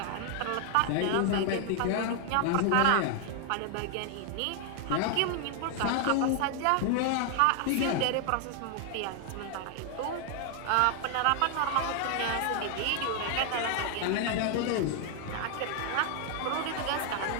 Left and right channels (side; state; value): both; different; correlation 0.00